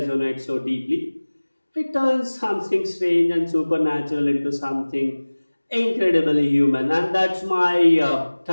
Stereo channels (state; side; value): inverted; both; correlation -1.00